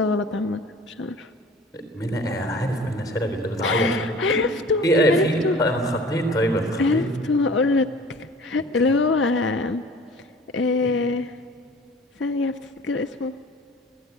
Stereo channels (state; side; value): normal; both; correlation 0.45